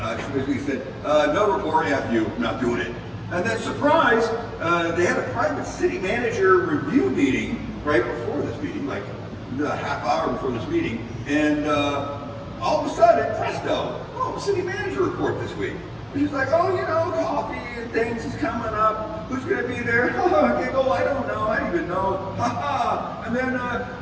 she basically said, no report, F you, not doing it. And then, surprise, they had a private city manager review meeting right before this meeting, like a half hour before this meeting, and all of a sudden, presto, city manager report this week. She's like, coffee and things is coming up. Who's going to be there? Giggle, I don't know. I don't even know. And then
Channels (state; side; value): identical; both; correlation 1.00